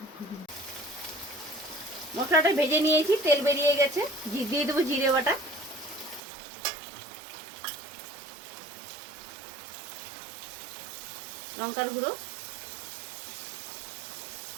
মশলাটা ভেজে নিয়েছি, তেল বেরিয়ে গেছে। দিয়ে দেবো জিরে বাটা, লঙ্কার গুঁড়ো,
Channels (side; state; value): left; drops out; at 6.2 s